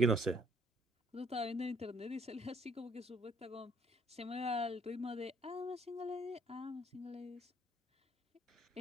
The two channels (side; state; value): both; normal; correlation 0.64